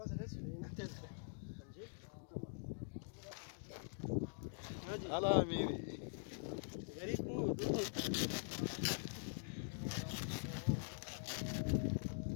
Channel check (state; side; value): silent; right; digital silence